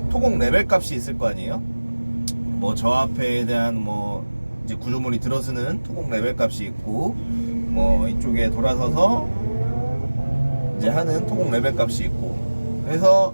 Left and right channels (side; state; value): both; inverted; correlation -1.00